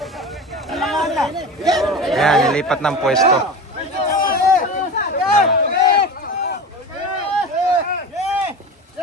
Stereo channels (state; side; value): normal; both; correlation 0.30